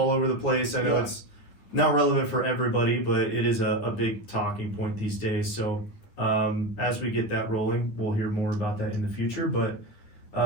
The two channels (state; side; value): late; right; 9.7 ms